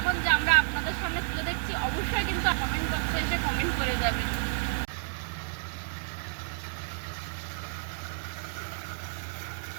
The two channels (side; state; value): left; silent; digital silence